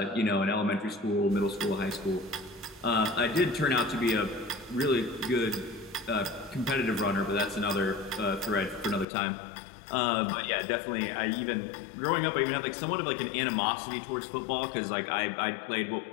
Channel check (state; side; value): drops out; right; at 9.1 s